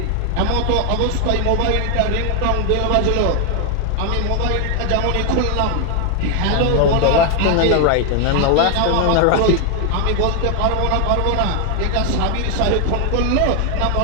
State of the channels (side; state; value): both; different; correlation 0.01